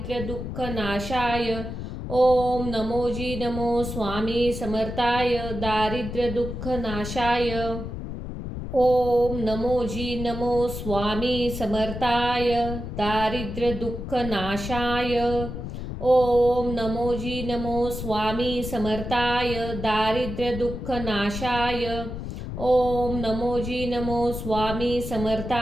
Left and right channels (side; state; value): left; noise; rumble, 7 dB below the sound